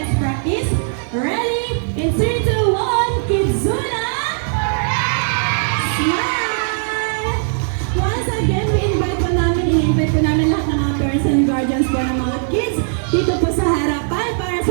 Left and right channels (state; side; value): silent; left; digital silence